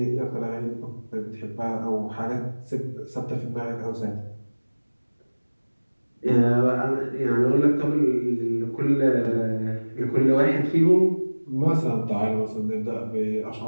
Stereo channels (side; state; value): both; inverted; correlation -1.00